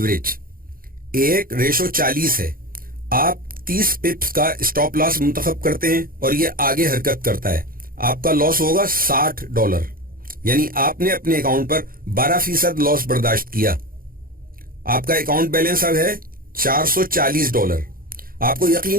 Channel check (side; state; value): left; late; 0.42 ms